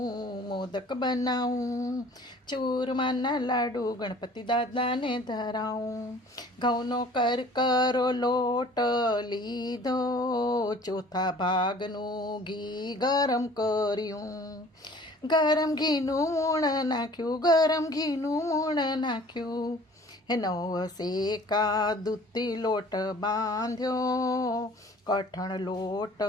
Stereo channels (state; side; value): normal; both; correlation 0.50